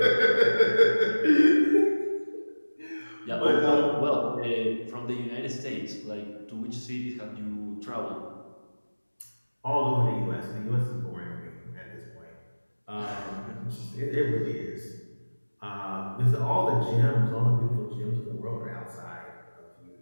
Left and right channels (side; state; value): both; inverted; correlation -1.00